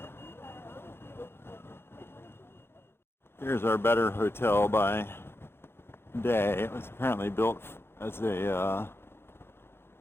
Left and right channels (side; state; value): right; late; 0.11 ms